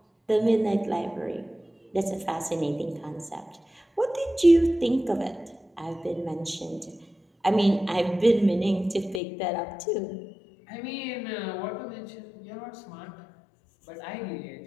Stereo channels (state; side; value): drops out; right; at 9.2 s